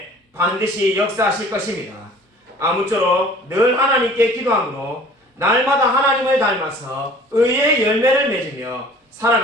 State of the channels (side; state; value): both; normal; correlation 0.49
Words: 반드시 역사하실 것입니다. 아무쪼록 늘 하나님께 기도함으로 날마다 하나님을 닮아서 의의 열매를 맺으며